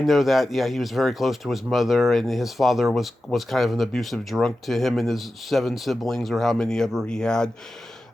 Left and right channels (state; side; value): normal; both; correlation 0.93